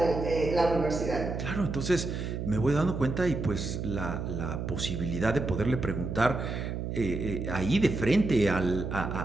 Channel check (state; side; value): noise; right; hum, 4 dB below the sound